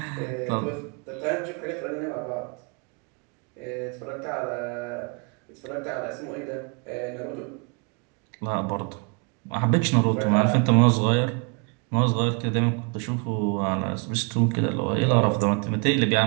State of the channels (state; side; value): quieter; left; 35.4 dB